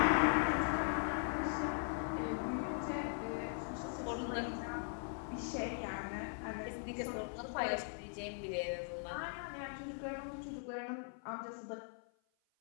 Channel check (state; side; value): silent; right; 51 dB below the other